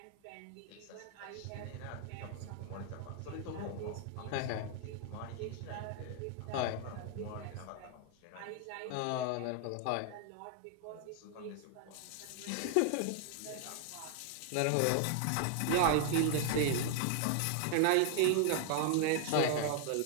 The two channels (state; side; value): different; both; correlation 0.00